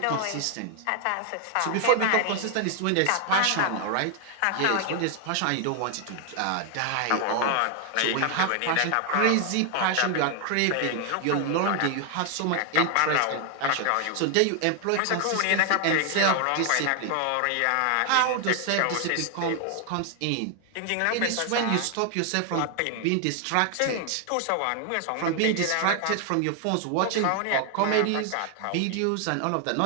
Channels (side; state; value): both; different; correlation 0.00